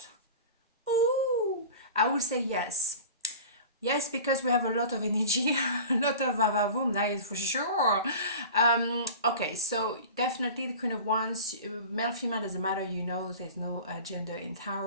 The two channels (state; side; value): inverted; both; correlation -0.36